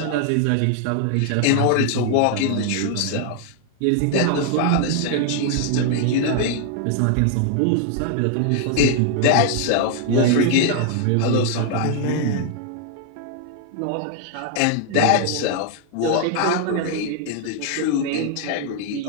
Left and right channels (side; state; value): both; different; correlation 0.00